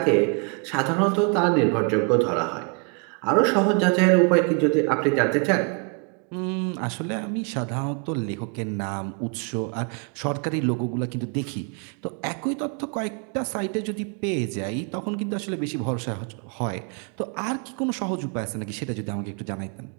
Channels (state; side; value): quieter; left; 37.0 dB